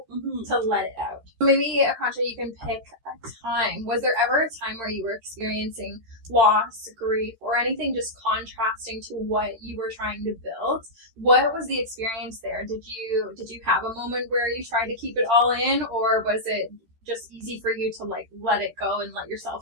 to let it out. Maybe, Akansha, you can pick a time. Was there ever a time where you were experiencing loss, grief, or anything just contrasting to what you were trying to build? What was the experience there? Did you have a moment where you tried to keep it all in, or was it just easy for you to like let it go and let yourself,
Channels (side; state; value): left; late; 13 ms